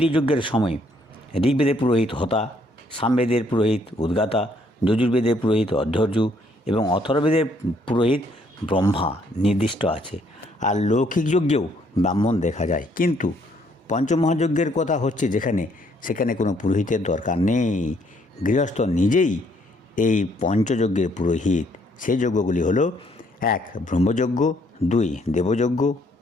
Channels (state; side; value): normal; both; correlation 0.67